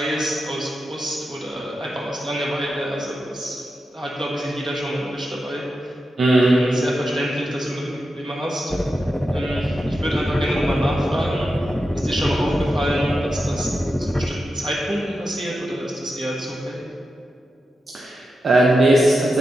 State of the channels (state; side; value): normal; both; correlation 0.89